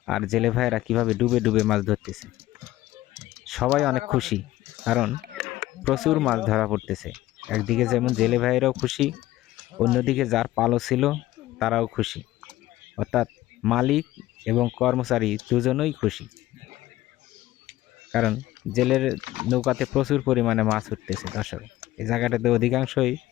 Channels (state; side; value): quieter; right; 15.8 dB